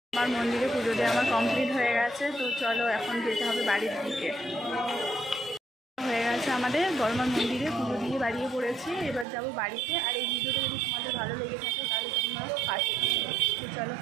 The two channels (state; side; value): drops out; left; at 9.2 s